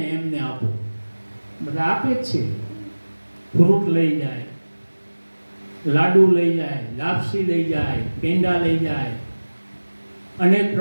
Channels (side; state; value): both; inverted; correlation -1.00